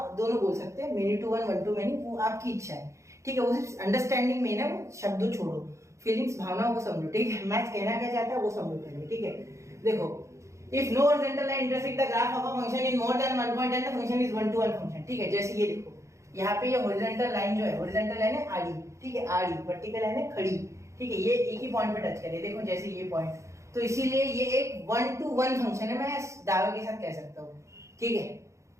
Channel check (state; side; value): late; left; 0.14 ms